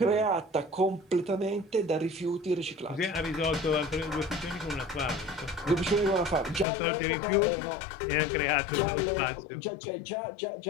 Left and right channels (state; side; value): drops out; right; at 6.7 s